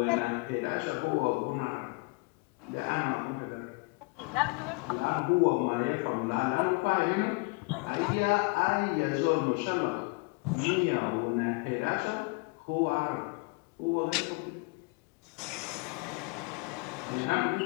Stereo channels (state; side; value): quieter; right; 29.2 dB